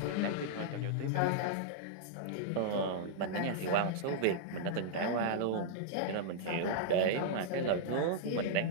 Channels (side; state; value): both; different; correlation -0.02